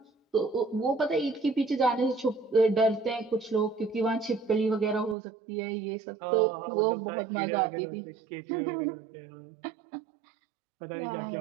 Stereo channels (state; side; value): drops out; left; at 5.2 s